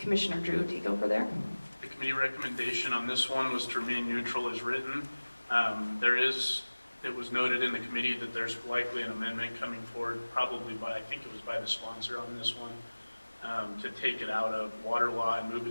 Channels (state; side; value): inverted; both; correlation -1.00